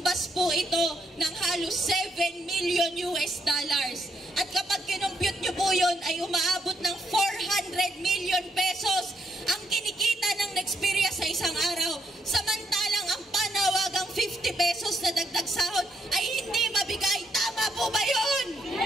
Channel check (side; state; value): both; normal; correlation 0.77